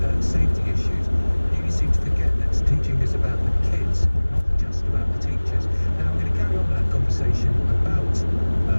safety issues. You seem to forget that teaching is about the kids, not just about the teachers. Now, we're going to carry on with that conversation about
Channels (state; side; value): inverted; both; correlation -1.00